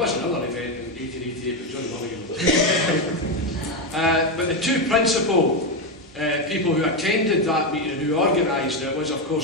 another event in 1888, but John Mulligan. But the two principal people who attended that meeting and who organised it was, of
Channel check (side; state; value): both; normal; correlation 0.09